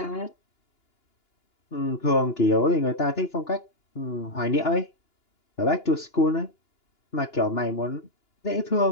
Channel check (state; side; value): late; right; 2.9 ms